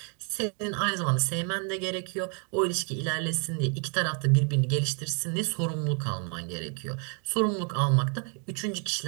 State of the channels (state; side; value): quieter; left; 39.8 dB